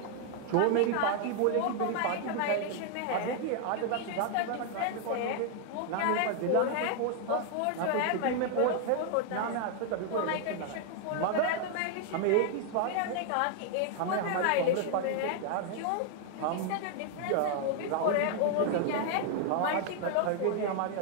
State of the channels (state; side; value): different; both; correlation 0.00